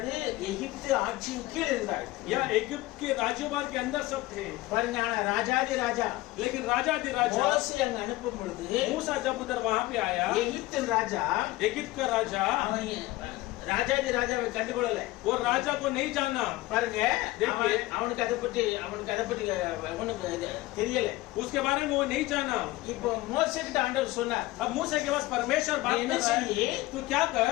எகிப்து ஆட்சியின் கீழ் இருந்தார்கள். या इजिप्ट के राज्यभार के अंदर सब थे। பாருங்க, ஆனா ராஜாதி ராஜா लेकिन राजा दी राजा மோசே அங்க அனுப்பும் பொழுது मूसा जब उधर वहां पे आया, எகிப்தின் ராஜா इजिप्ट का राजा அவன் ராஜாதி ராஜாவை கண்டுகொள்ளல. वो राजा को नहीं जाना। பாருங்க, देखिए। அவனுக்கு அதை பற்றி அவனுக்கு தெரியல. उसके बारे में वो नहीं जाना। இப்போ மோசே கிட்ட ஆண்டவர் சொன்னார், अब मूसा के पास परमेश्वर बात என்ன कर रहा है, செய்யி? तू क्या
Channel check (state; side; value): quieter; right; 18.7 dB